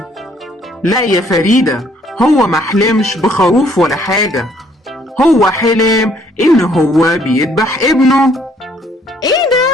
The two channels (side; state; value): both; normal; correlation 0.64